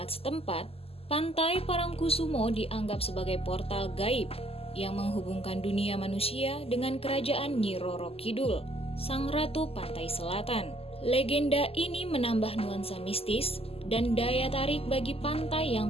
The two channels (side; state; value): right; late; 0.28 ms